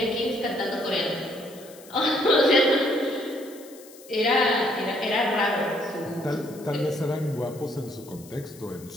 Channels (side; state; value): left; noise; hiss, 21 dB below the sound